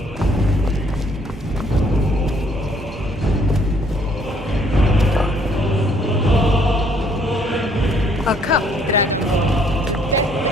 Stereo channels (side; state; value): both; normal; correlation 0.64